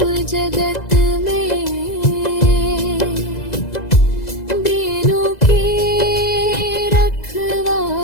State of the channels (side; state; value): right; late; 2.0 ms